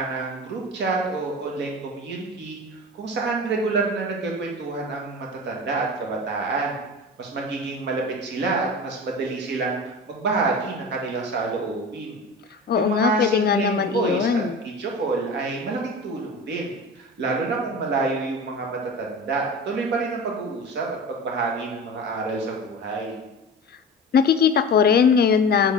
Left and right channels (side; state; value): both; normal; correlation 0.32